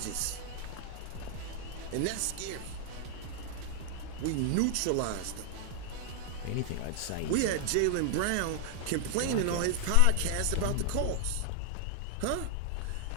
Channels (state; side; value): different; both; correlation 0.00